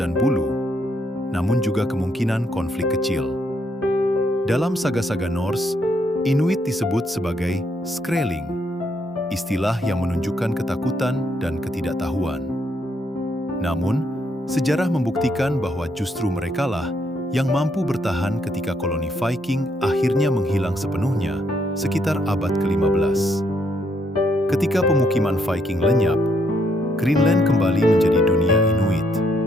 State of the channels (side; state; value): both; normal; correlation 0.73